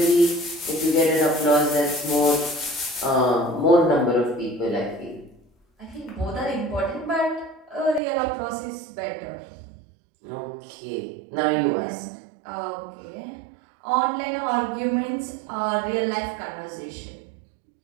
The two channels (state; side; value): drops out; left; at 8.0 s